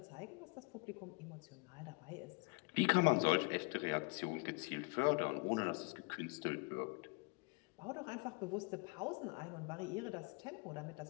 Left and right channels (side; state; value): right; quieter; 31.4 dB